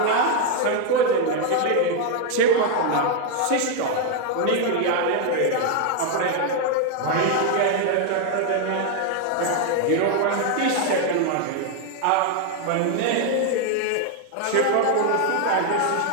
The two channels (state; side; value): different; both; correlation 0.00